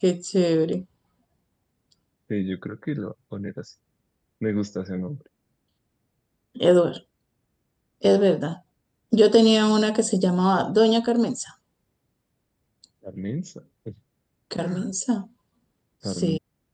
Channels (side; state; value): both; identical; correlation 1.00